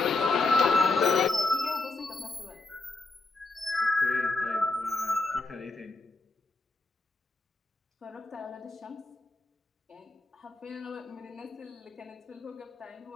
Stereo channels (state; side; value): quieter; right; 3.3 dB